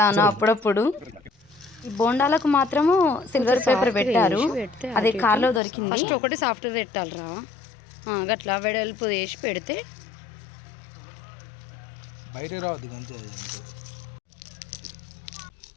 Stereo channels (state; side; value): drops out; right; at 5.6 s